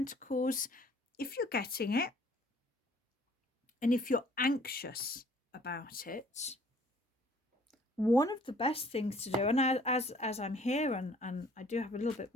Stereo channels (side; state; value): both; normal; correlation 0.57